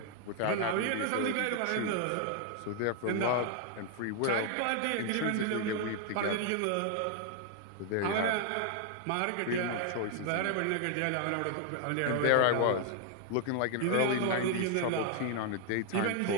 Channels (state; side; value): different; both; correlation 0.00